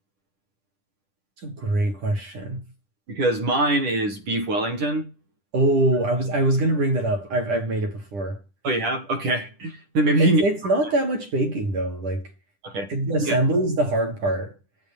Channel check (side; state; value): left; late; 10 ms